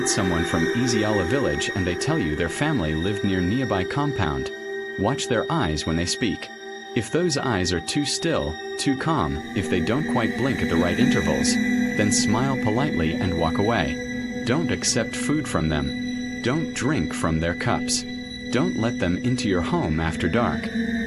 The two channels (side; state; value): both; identical; correlation 1.00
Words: someone from Eziala village and they tell you their family lived near nearby compound, watch their eyes when they speak. If those eyes are too still, too calm, if they don't quite blink at the right intervals, then smile politely and walk away. Don't accept food from them. Don't drink from their cups. Don't let them into your home after dark,